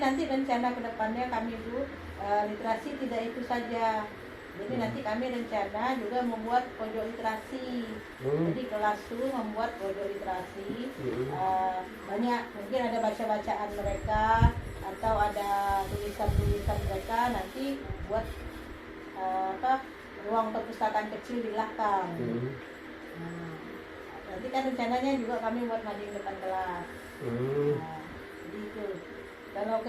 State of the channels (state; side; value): identical; both; correlation 1.00